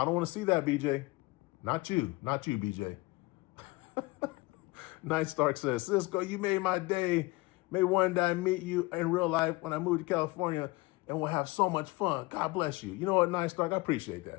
don't want to see that, BJ. Not you, BJ. Night Stark says, Sisco, you made my day. May one day I meet you in real life when I move to California, and we'll have so much fun. God bless you. You know what, Night Stark? I appreciate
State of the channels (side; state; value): right; quieter; 23.3 dB